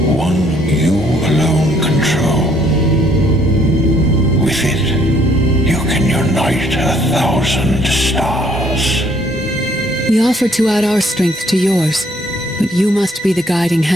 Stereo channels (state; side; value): normal; both; correlation 0.64